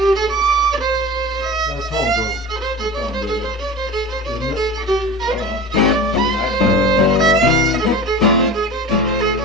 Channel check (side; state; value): both; normal; correlation 0.34